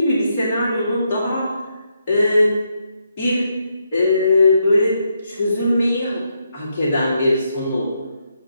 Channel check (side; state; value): both; inverted; correlation -0.80